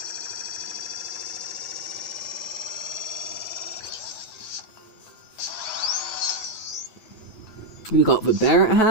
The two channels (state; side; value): late; right; 9.2 ms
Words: We got the Barrett